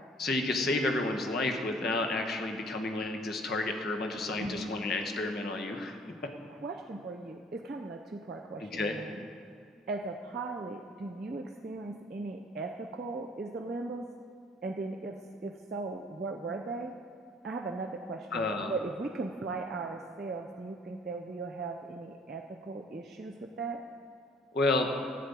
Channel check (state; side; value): normal; both; correlation 0.56